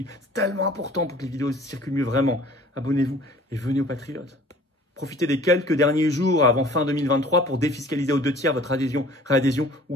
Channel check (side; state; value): both; normal; correlation 0.50